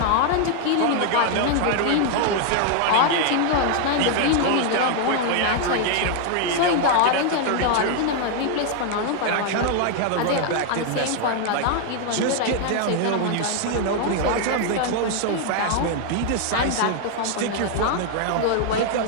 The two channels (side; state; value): both; different; correlation 0.00